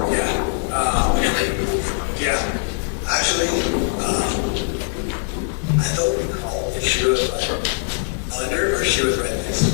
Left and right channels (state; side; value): silent; right; digital silence